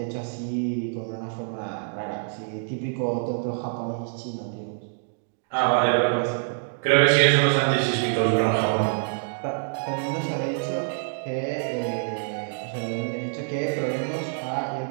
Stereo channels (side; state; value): left; silent; digital silence